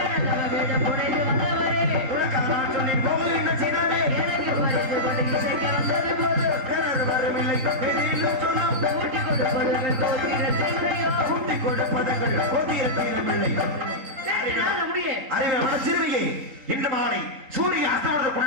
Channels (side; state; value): left; late; 3.9 ms